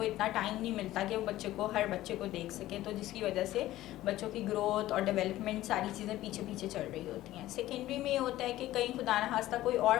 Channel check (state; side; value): quieter; right; 15.3 dB